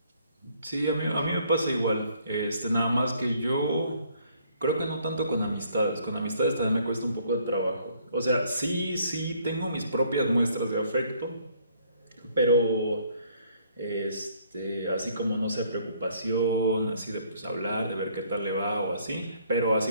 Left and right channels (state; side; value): inverted; both; correlation -0.64